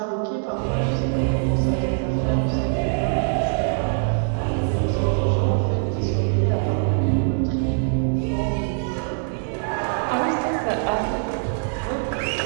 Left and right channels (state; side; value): silent; left; digital silence